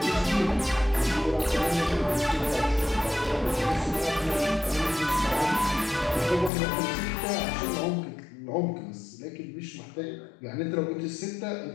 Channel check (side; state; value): right; drops out; at 6.5 s